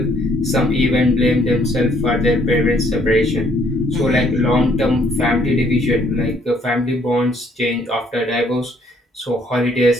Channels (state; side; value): normal; both; correlation 0.65